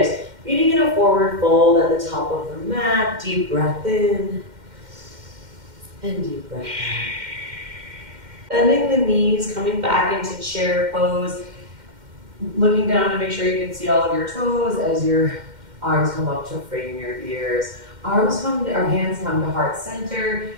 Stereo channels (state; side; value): late; left; 2.1 ms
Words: Meeting in a forward fold at the top of the mat. Deep breath in and deep breath out. Bending the knees, coming back into chair pose. Looking down to make sure you can see all of your toes as your arms come up to frame your ears. Hands come to heart center.